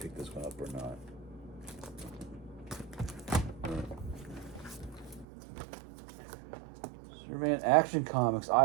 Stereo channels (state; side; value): drops out; left; at 5.2 s